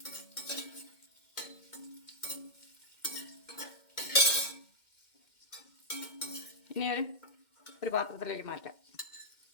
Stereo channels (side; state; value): right; late; 2.1 ms